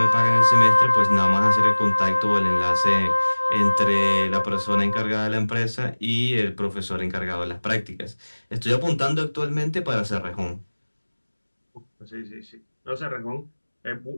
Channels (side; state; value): both; inverted; correlation -1.00